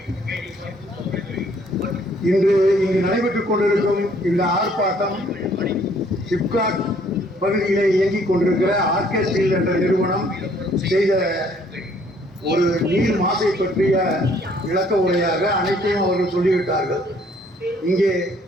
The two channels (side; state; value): both; normal; correlation 0.62